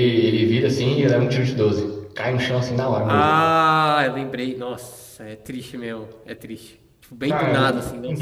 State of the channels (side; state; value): both; identical; correlation 1.00